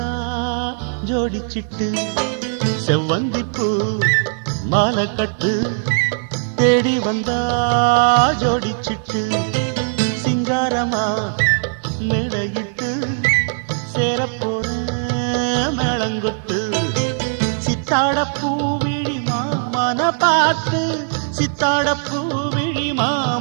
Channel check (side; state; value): left; silent; 66 dB below the other